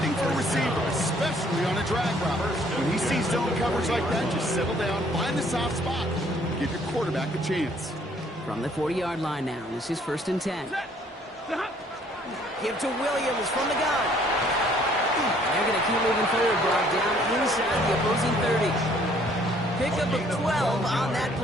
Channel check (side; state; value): both; normal; correlation 0.61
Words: for a receiver, especially on a drag route. When he sees zone coverage like that, just settle down, find the soft spot, give your quarterback a chance. From the 40-yard line now, this is first and 10. Give to Williams from the gun. They're going to keep moving forward, Brock, down inside the opposing 30. Pickup of 12 on that